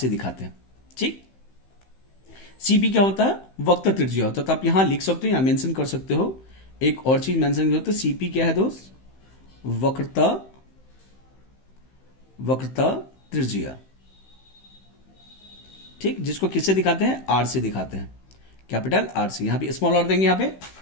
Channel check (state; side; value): late; right; 15 ms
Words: दिखाते हैं, ठीक। सीपी क्या होता है? वक्र त्रिज्या होता है। तो आप यहां लिख सकते हो, यहां मेंशन कर सकते हो, एक और चीज मेंशन करते हो, सीपी क्या है दोस्त? वक्रता त्रिज्या, ठीक, जिसको किससे दिखाते हैं? आर से दिखाते हैं, कैपिटल आर से, यहां पे स्मॉल आर देंगे यहां पे,